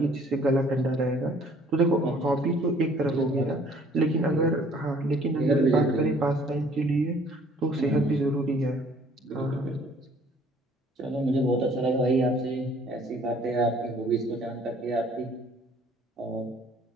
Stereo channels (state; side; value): normal; both; correlation 0.58